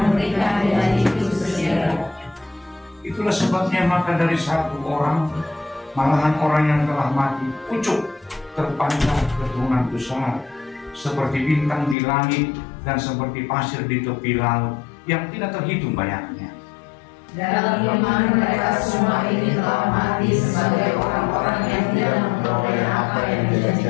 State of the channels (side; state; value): right; drops out; at 12.0 s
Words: ketika hari itu segera. Itulah sebabnya maka dari satu orang, malahan orang yang telah mati, pucuk terpanjang keturunan besar, seperti bintang di langit dan seperti pasir di tepi laut yang tidak terhitung banyaknya. Dalam iman mereka semua ini telah mati sebagai orang-orang yang tidak memperoleh apa yang